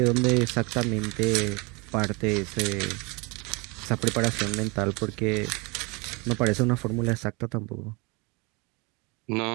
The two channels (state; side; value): quieter; left; 28.3 dB